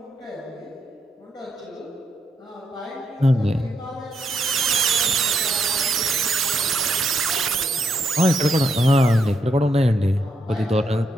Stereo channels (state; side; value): normal; both; correlation 0.79